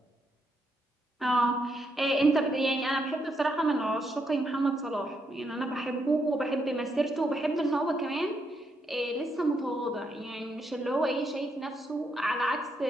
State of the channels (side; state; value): both; normal; correlation 0.78